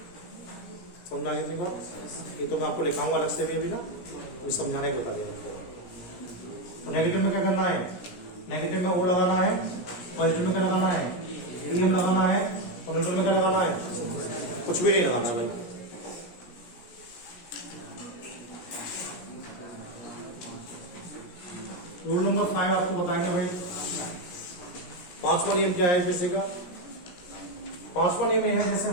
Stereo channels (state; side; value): late; right; 17 ms